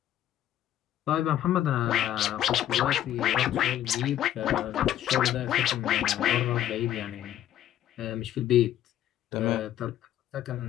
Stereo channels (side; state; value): right; quieter; 11.8 dB